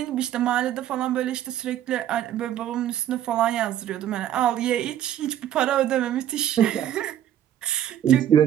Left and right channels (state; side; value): quieter; left; 11.3 dB